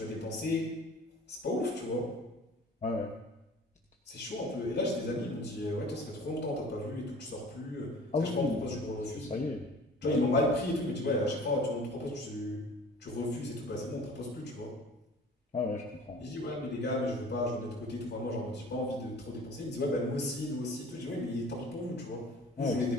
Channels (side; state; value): both; normal; correlation 0.45